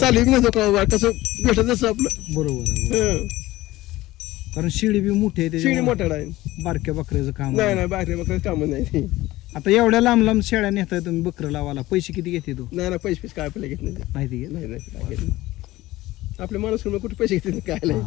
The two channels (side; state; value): right; quieter; 17.6 dB